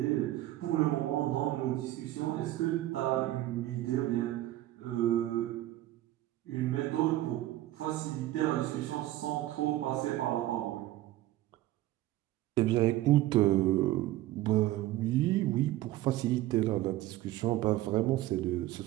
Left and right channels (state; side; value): quieter; left; 15.5 dB